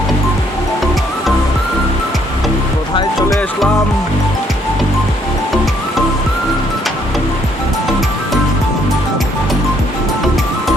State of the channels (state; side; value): normal; both; correlation 0.68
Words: কোথায় চলে আসলাম?